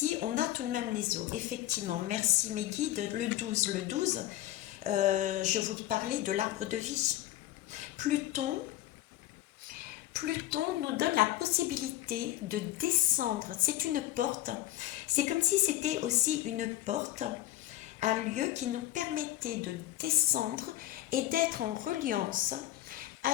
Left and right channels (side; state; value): right; quieter; 14.6 dB